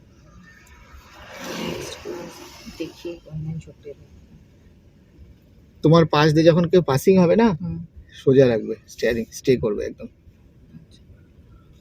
তোমার পাশ দিয়ে যখন কেউ পাসিং হবে না, সোজা রাখবে স্টিয়ারিং, স্টে করবে একদম।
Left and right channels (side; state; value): both; identical; correlation 1.00